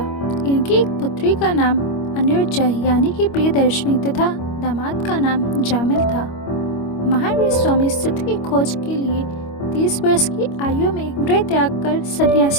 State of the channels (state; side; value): late; right; 25 ms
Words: इनकी एक पुत्री का नाम अनिरुद्धा यानी कि प्रियदर्शनी तथा दामाद का नाम जामिल था। महावीर स्वामी सत्य की खोज के लिए 30 वर्ष की आयु में गृह त्याग कर